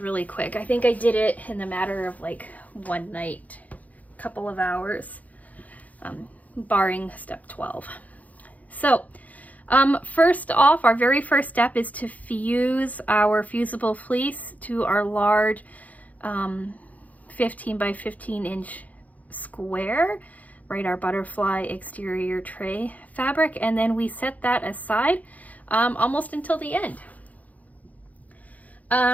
really quick. I think I did it in the matter of like one night, couple of hours, barring step 12. So first off, our very first step is to fuse our fusible fleece to our large 15 by 15 inch square, right, our butterfly exterior tray fabric, and then we set that aside almost until the end.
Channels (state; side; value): late; right; 0.075 ms